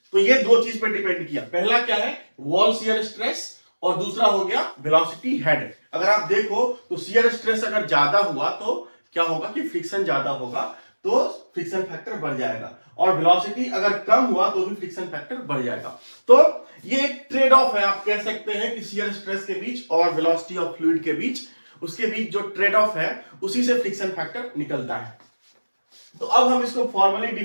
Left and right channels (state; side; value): inverted; both; correlation -1.00